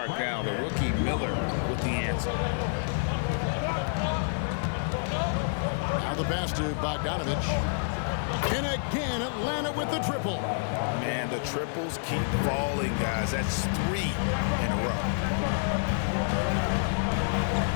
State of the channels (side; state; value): right; silent; digital silence